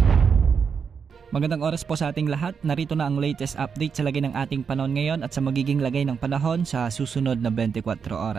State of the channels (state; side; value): quieter; left; 6.3 dB